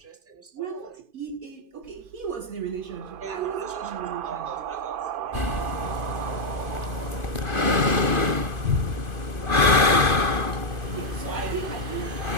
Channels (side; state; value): left; late; 2.5 ms